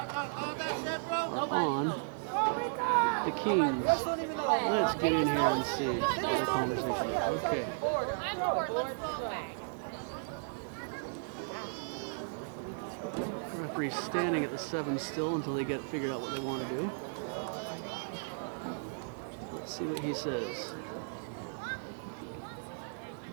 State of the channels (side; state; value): left; silent; 55 dB below the other